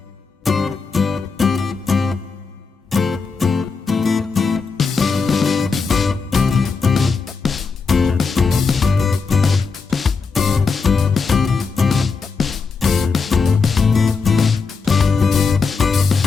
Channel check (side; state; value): right; quieter; 4.8 dB